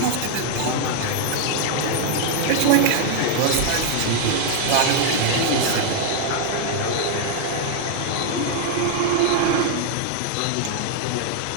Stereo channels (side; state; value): both; different; correlation 0.00